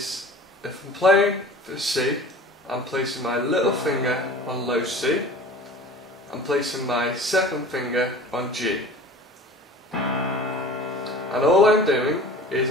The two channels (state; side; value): normal; both; correlation 0.41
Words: if I'm playing for C, I'm placing my little finger on low C. I'm placing my second finger on G. And all I'm doing is